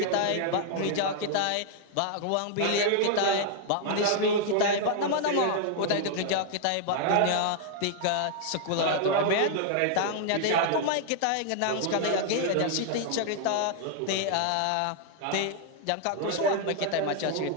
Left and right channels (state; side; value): different; both; correlation 0.00